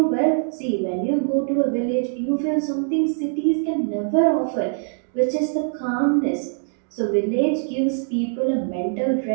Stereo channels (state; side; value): silent; left; digital silence